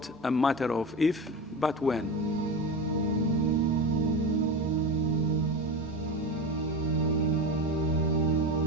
a matter of if, but when.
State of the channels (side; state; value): both; normal; correlation 0.24